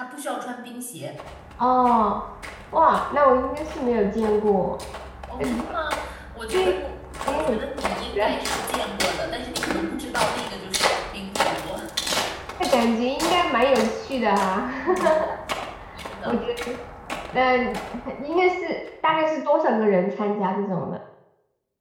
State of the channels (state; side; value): identical; both; correlation 1.00